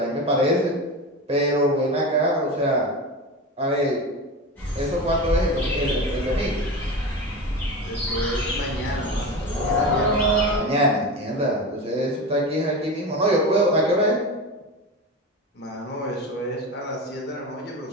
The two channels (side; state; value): both; normal; correlation 0.25